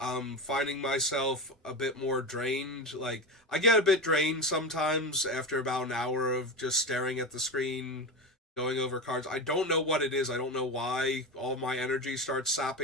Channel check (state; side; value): normal; both; correlation 0.21